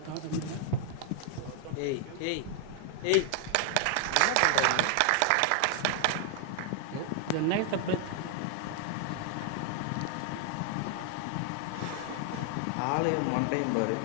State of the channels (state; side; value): different; both; correlation 0.00